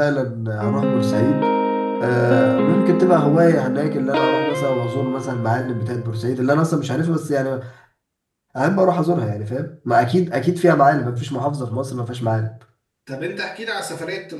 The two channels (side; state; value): both; identical; correlation 1.00